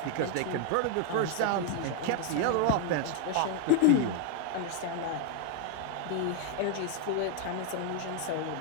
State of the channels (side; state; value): both; different; correlation 0.01